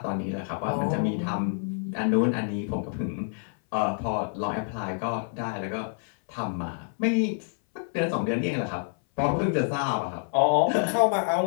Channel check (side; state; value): right; silent; 60 dB below the other